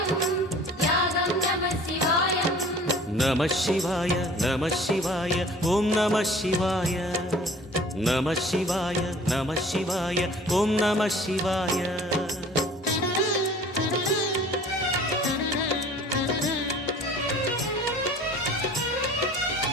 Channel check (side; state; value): both; normal; correlation 0.48